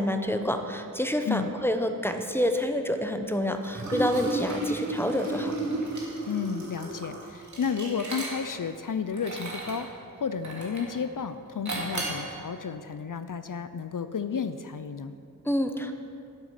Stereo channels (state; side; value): normal; both; correlation 0.45